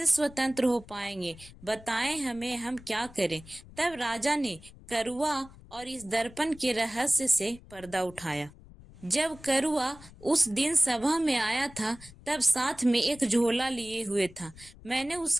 स्वतंत्र हो पाएंगे? बताएं हमें, हम क्या करें? तब राजा ने करुआ और इस दर्पण के रहस्य से पर्दा उठाया। जब करुआ उस दिन सभा में आया था तब साथ में एक झोला लिए हुए था। मैंने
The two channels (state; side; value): noise; left; rumble, 21 dB below the sound